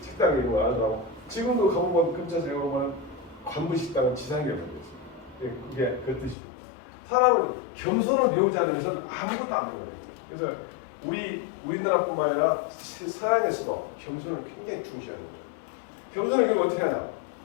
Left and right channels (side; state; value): right; drops out; at 6.4 s